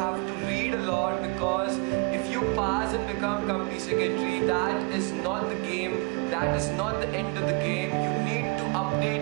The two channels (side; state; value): left; quieter; 29.9 dB